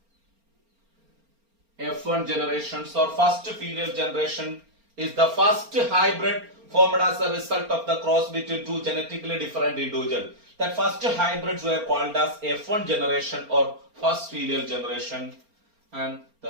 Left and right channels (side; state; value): left; late; 4.3 ms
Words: F1 generations or first filial generation is the first hybrid formed as a result of the cross between two genetically different individuals. That first hybrids were called as F1 generation or first filial generation, and